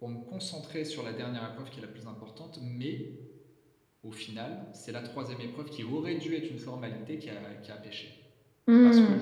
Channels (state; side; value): identical; both; correlation 1.00